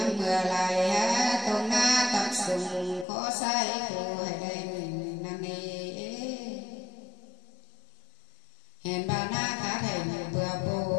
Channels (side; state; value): right; drops out; at 3.1 s